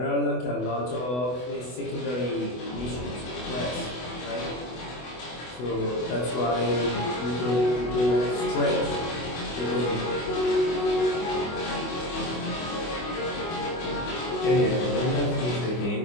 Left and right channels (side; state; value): right; late; 24 ms